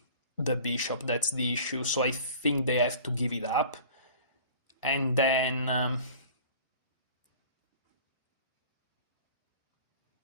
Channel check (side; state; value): both; inverted; correlation -0.45